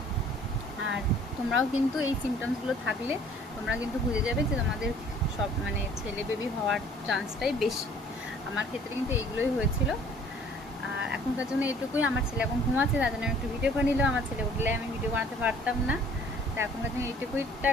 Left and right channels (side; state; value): both; normal; correlation 0.54